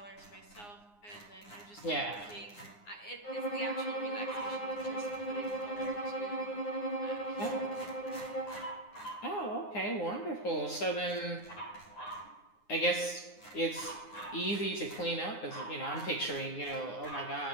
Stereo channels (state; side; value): late; right; 9.7 ms